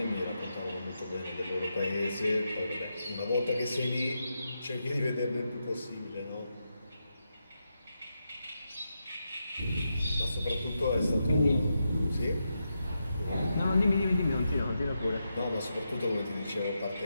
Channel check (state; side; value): inverted; both; correlation -0.86